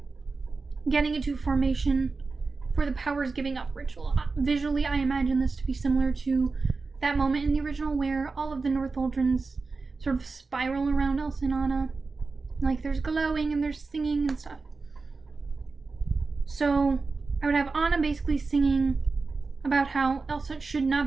getting into formation for the powers giving up ritual. Visually, I imagine this to be similar to that moment in the original where all of the Northuldrans sort of spiral around Elsa and Anna. Like there's glowing and there's singing and stuff. So I would have Anna basically singing about how Elsa should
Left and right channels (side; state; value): left; quieter; 4.1 dB